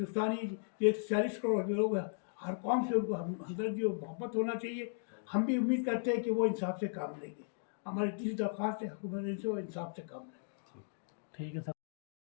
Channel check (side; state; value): right; silent; digital silence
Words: ये 40 करोड़ के लोग हैं, हर कौम से उनको हमदर्दी और मोहब्बत होना चाहिए। हम भी उम्मीद करते हैं कि वो इंसाफ से काम लेंगे। हमारी तीसरी दरख्वास्त है, हुकूमत इनसे इंसाफ से काम लें। ठीक है सर।